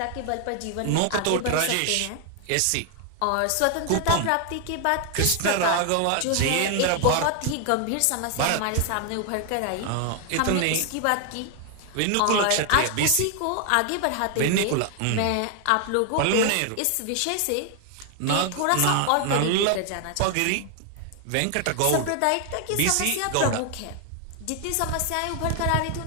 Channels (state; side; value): different; both; correlation 0.00